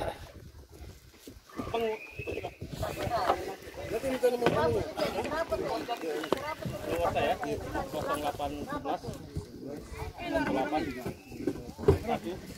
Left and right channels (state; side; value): identical; both; correlation 1.00